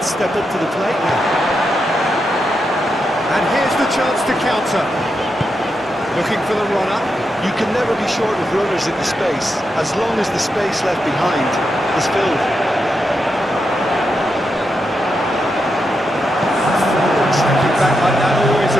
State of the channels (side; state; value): both; normal; correlation 0.85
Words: step up to the plate now. And here's the chance to counter. Looking for the runner. You can never be short of runners in the space, as long as the space left behind is filled. Stepping back like that, always